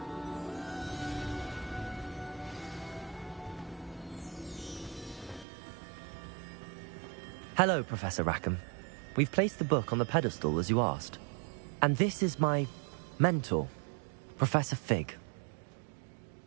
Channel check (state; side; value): drops out; left; at 5.5 s